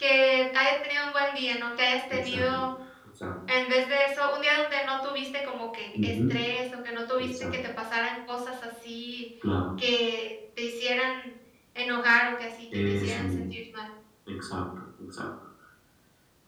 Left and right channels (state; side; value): identical; both; correlation 1.00